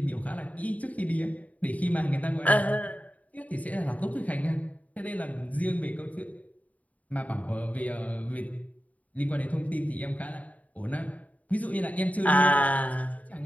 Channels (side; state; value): right; late; 0.071 ms